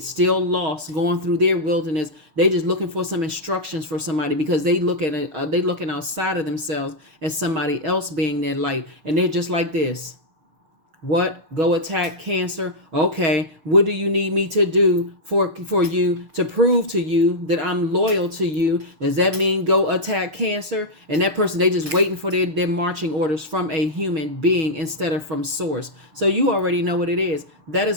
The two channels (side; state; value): left; late; 6.6 ms